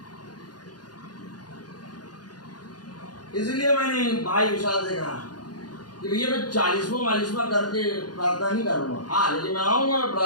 इसलिए मैंने भाई विशाल से कहा कि भैया मैं 40वां करके प्रार्थना नहीं करूंगा। हाँ, लेकिन मैं आऊंगा, मैं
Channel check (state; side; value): late; right; 0.69 ms